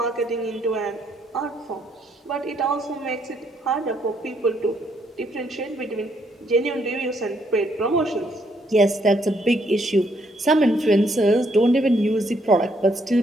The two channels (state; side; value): normal; both; correlation 0.71